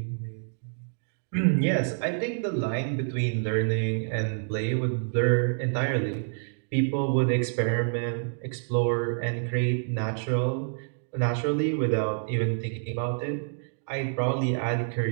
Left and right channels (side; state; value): left; silent; digital silence